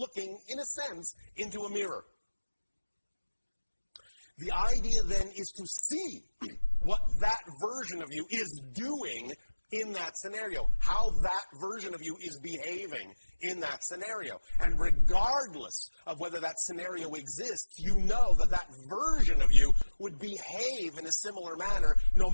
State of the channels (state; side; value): inverted; both; correlation -1.00